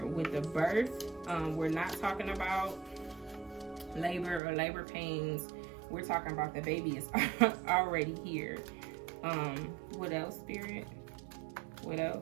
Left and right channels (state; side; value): drops out; left; at 4.4 s